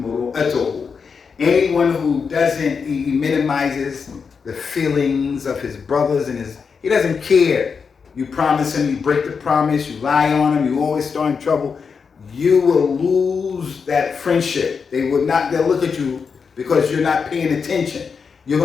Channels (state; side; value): quieter; right; 5.7 dB